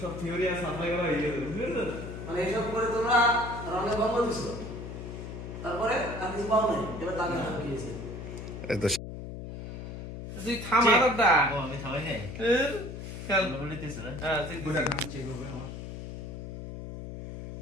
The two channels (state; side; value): noise; left; hum, 9 dB below the sound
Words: সব থিওরি আর সাপ্লাই করা হয়ে গেছে, বুঝছেন? মানে এইসব করে তোমরা রানে বন্ধ দিছো, তারপরে আর কিছু পাও নাই, এবার দাগে হাত দিয়েছে। তুই থামা দাদা। ও আমি থামাই নাই। খেল বলিতেছ না? হ্যাঁ, তুই বুঝা না। চেক করবে আমার।